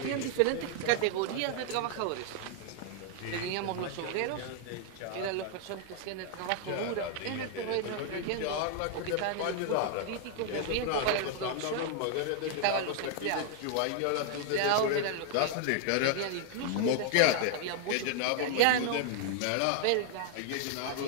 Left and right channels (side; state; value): both; different; correlation 0.00